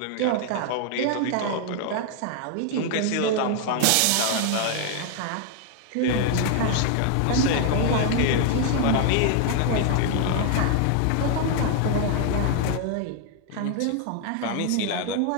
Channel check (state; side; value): different; both; correlation 0.00